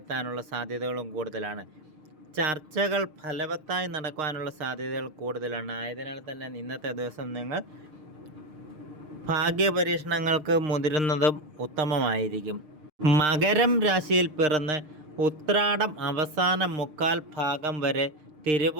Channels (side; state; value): left; late; 6.5 ms